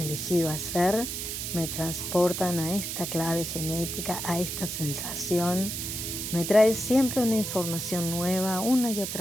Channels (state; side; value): noise; right; hiss, 4 dB below the sound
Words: hacer me transportan a esta clave genética, a esta sensación. Me trae siempre una información nueva, una y